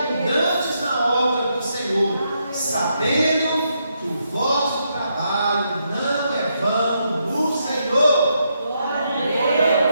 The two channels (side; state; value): both; inverted; correlation -0.79